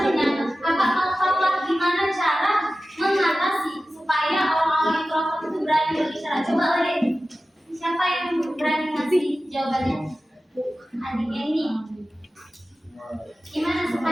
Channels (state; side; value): normal; both; correlation 0.95